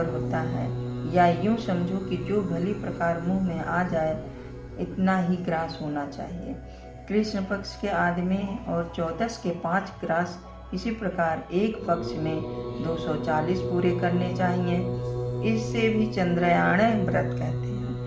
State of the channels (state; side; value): identical; both; correlation 1.00